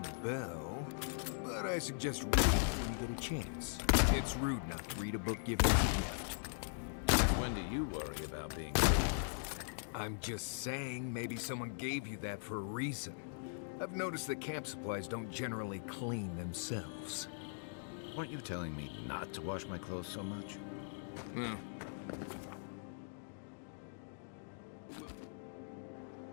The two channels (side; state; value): right; silent; digital silence